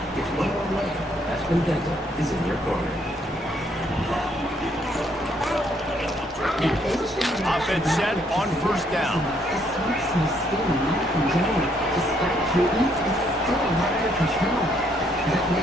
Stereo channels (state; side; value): normal; both; correlation 0.69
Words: It's one way. Aspen Dental is in your corner. Offense set on first down.